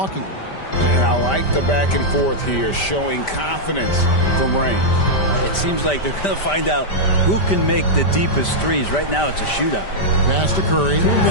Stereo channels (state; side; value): late; right; 5.1 ms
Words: And I like the back and forth here, showing confidence from range. It seems like they're going to find out who can make the deepest threes. Right now, it's a shootout. Pass to Curry.